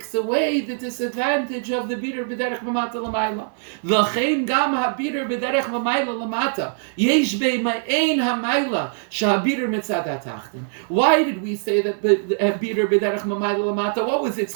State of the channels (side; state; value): left; silent; 57 dB below the other